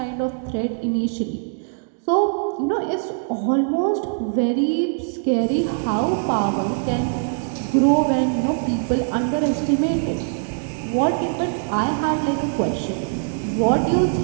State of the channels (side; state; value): left; silent; digital silence